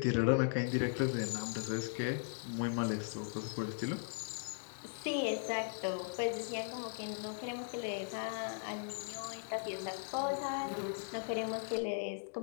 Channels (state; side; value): silent; right; digital silence